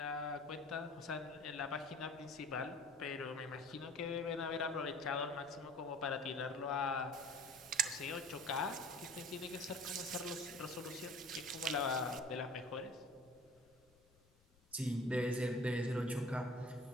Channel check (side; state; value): left; noise; rumble, 30 dB below the sound